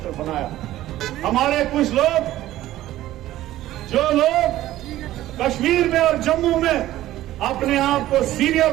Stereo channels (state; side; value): quieter; left; 14.6 dB